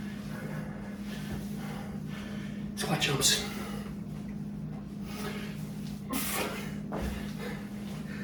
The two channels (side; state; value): both; identical; correlation 1.00